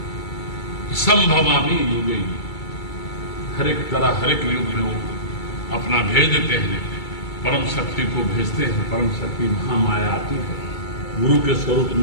संभवामी युगे, हर एक तरह हर एक युग में वो अपना भेज देते हैं, परम शक्ति को भेजते हैं। परम शक्ति महामाया आती है, गुरु के स्वरूप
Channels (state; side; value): late; right; 2.3 ms